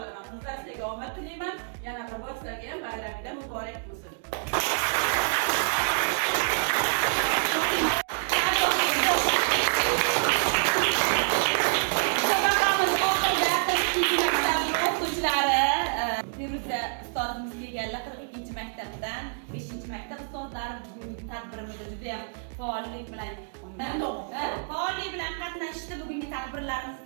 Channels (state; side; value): silent; left; digital silence